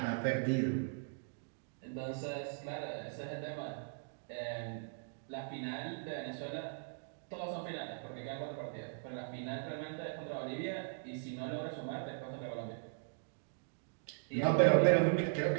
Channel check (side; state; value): left; silent; digital silence